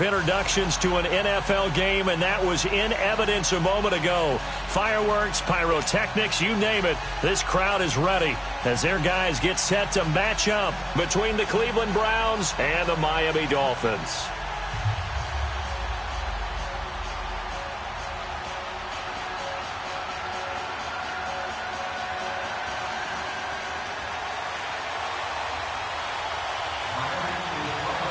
introductions to an NFL game, and that was in evidence a moment ago. Fireworks, pyrotechnics, you name it. This crowd is ready as their guys get set to match up between the Cleveland Browns and the Miami Dolphins.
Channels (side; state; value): both; identical; correlation 1.00